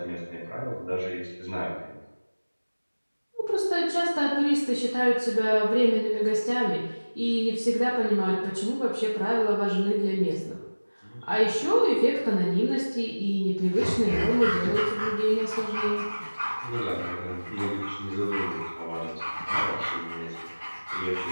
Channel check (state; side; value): inverted; both; correlation -1.00